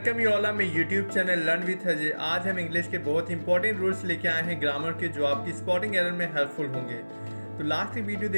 you all on my YouTube channel learn with Ajay. आज हम इंग्लिश के बहुत इंपॉर्टेंट रूल्स लेके आए हैं ग्रामर के, जो आपकी स्पॉटिंग एरर में हेल्पफुल होंगे। तो लास्ट की वीडियो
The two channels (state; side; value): inverted; both; correlation -1.00